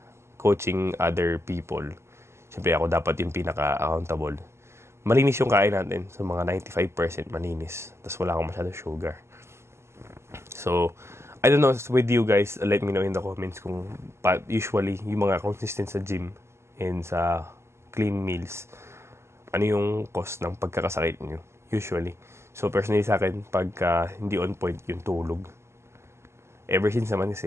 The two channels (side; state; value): left; late; 0.13 ms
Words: coaching other people. Siyempre ako dapat yung pinaka-accountable. Malinis yung kain natin. So, mga 95% malinis. Tapos wala akong masyado sugar. So, I don't know with you guys, let me know in the comments kung usually yung mga consistent sa gym and sa clean meals, ano yung cost ng pagkakasakit nyo, usually. So, personally sa akin, pagka hindi on point yung tulog, ever since naman